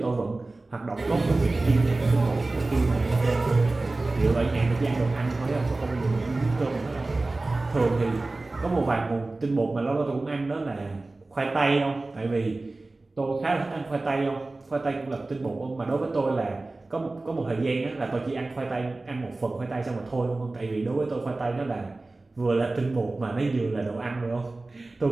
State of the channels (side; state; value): left; quieter; 3.2 dB